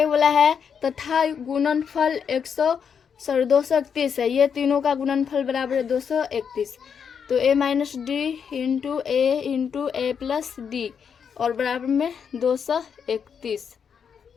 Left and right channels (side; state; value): right; quieter; 7.0 dB